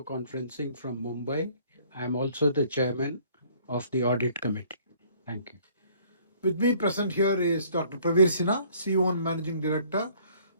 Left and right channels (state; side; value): inverted; both; correlation -0.59